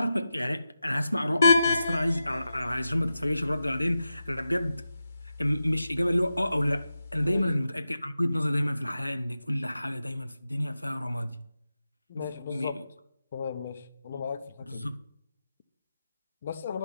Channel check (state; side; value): inverted; both; correlation -0.90